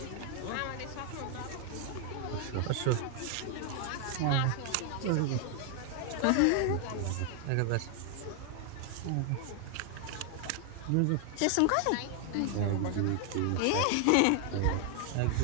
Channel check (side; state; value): both; different; correlation 0.00